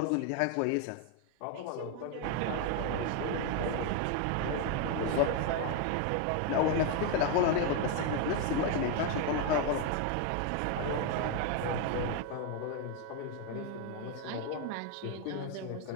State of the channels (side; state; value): both; different; correlation 0.01